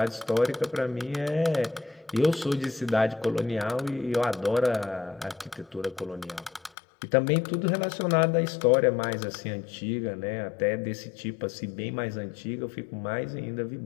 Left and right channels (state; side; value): drops out; right; at 6.7 s